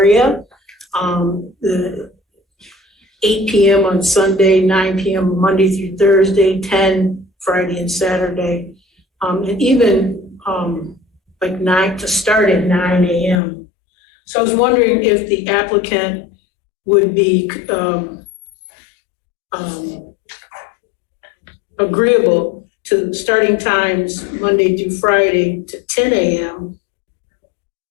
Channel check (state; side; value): drops out; right; at 13.4 s